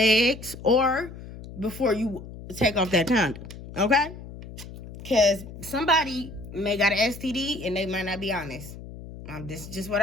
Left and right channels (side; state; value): left; noise; hum, 14 dB below the sound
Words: or before you take off that condom. Okay? Because somebody may got an STD and they might not be honest. This is just what